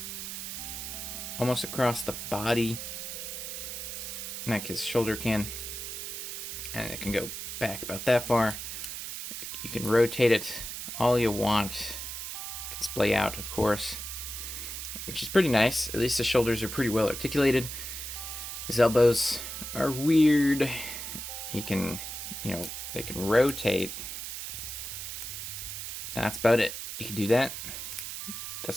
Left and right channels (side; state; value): right; noise; hiss, 6 dB below the sound